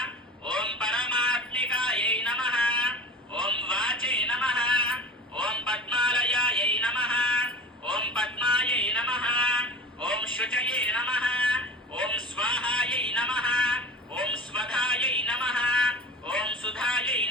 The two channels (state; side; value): normal; both; correlation 0.34